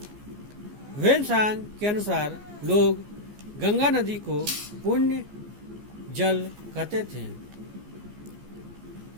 वेनसांग के अनुसार लोग गंगा नदी को पुण्य जल कहते थे।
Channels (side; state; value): left; late; 14 ms